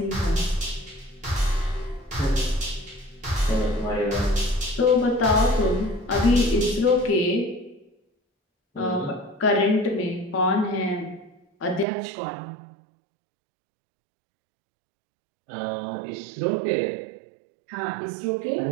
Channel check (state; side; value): drops out; left; at 11.9 s